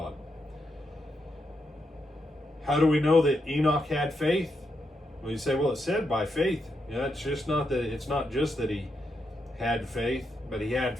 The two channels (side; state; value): both; normal; correlation 0.82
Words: How do we know that Enoch had faith? Well, you say, well, it said by faith. Yeah, it's not just that he had faith, but he had